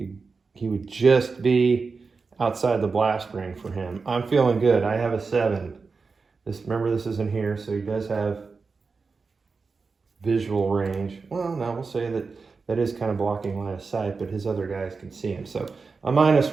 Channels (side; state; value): left; quieter; 4.6 dB